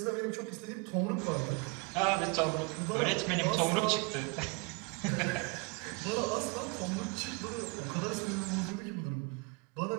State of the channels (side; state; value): left; quieter; 31.4 dB